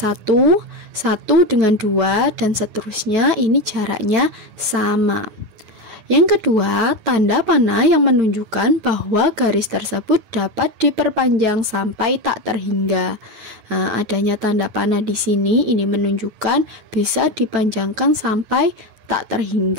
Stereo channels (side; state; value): left; late; 9.4 ms